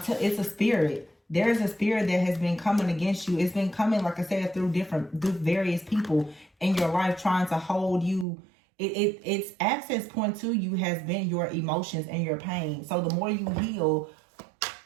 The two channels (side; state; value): left; drops out; at 8.2 s